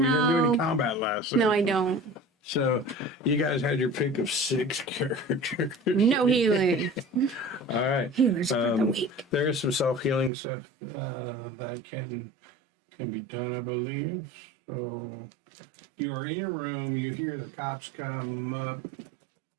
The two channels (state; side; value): drops out; left; at 10.3 s